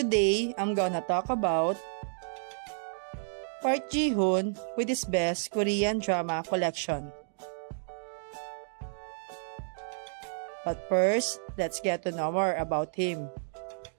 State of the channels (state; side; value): silent; left; digital silence